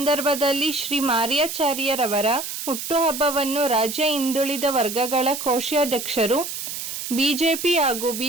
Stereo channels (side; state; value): right; noise; hiss, 6 dB below the sound